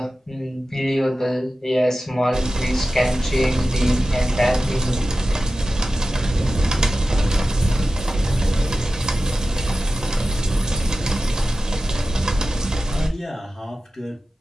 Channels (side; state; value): both; normal; correlation 0.94